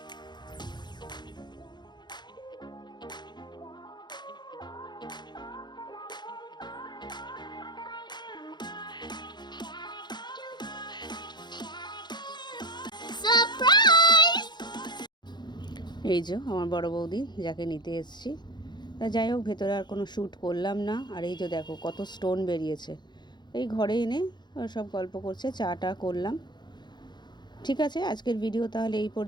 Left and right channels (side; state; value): right; late; 0.21 ms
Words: এই যে আমার বড় বৌদি, যাকে নিতে এসেছি। তা যাই হোক, ভেতরে আর কোনো শ্যুট করলাম না। আর এই যে দেখো কত স্টোন বেরিয়েছে। এই ঘরে এনে সব গল্প করছে, চাটা করলাম। ঠিক আছে, আজকের ভিডিও তাহলে এই